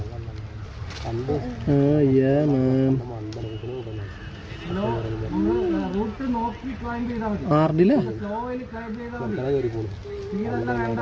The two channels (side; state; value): both; identical; correlation 1.00